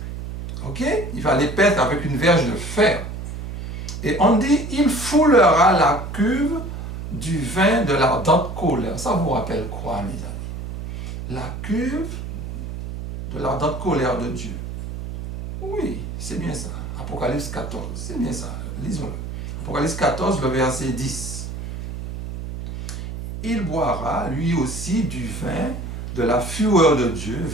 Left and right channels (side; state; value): right; noise; hum, 7 dB below the sound